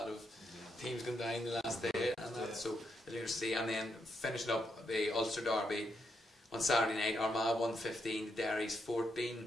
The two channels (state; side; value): normal; both; correlation 0.80